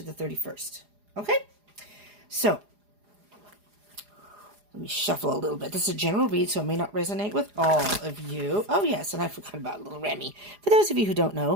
the 31st. Okay? So, let me shuffle a little bit. This is a general read, so it may not resonate with all of you. Oh, yes, and I forgot about little Remy. For those of you who don't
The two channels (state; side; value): late; left; 4.9 ms